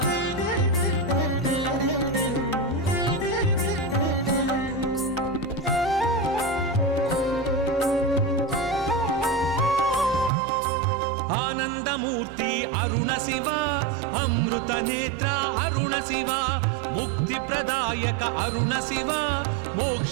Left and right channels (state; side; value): drops out; left; at 10.3 s